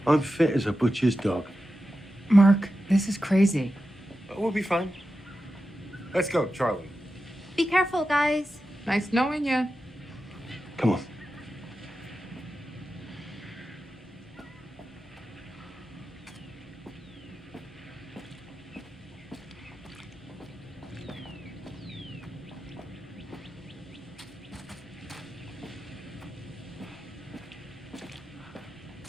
I'm fit as a butcher's dog. Mark, this is crazy. We'll be fine. Let's go, Charlie. Be careful, guys. Nice knowing you. Come on.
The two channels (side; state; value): both; normal; correlation 0.91